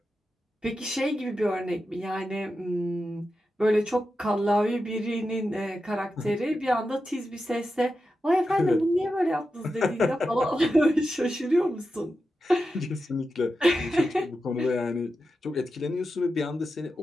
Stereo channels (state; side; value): normal; both; correlation 0.90